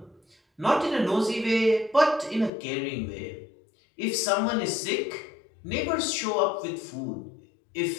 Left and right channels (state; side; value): drops out; right; at 2.5 s